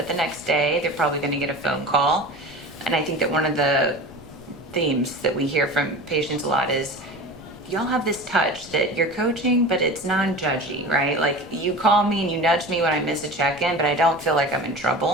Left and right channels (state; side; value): noise; left; rumble, 21 dB below the sound